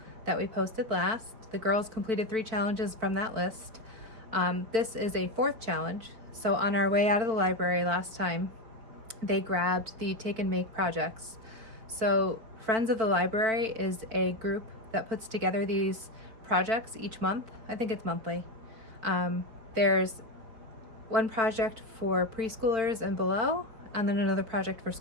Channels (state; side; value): late; left; 4.5 ms